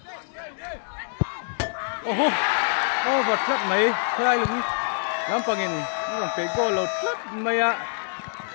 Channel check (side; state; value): right; silent; 61 dB below the other